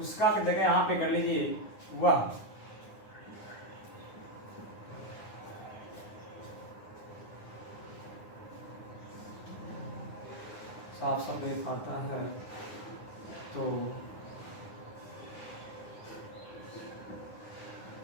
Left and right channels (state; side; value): late; right; 9.7 ms